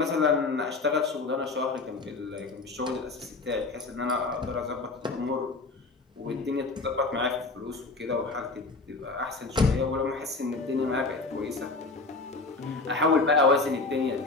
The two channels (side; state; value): right; quieter; 3.6 dB